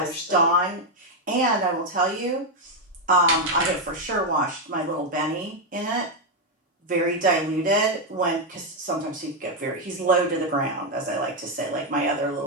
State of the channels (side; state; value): both; normal; correlation 0.03